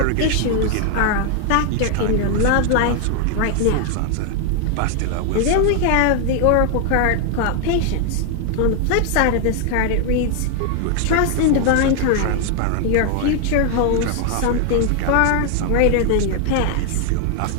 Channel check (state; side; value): different; both; correlation 0.00